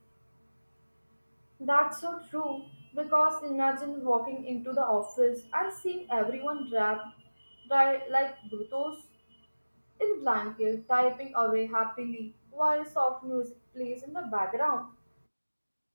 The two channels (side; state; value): both; inverted; correlation -1.00